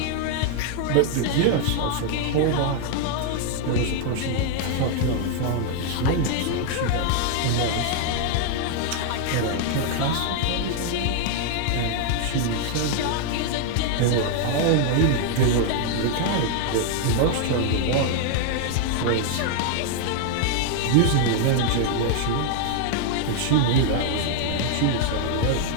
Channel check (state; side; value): different; both; correlation 0.00